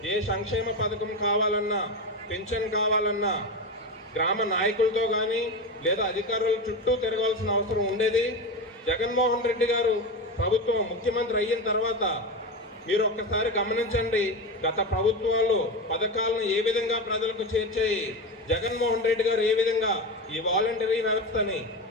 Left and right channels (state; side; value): normal; both; correlation 0.20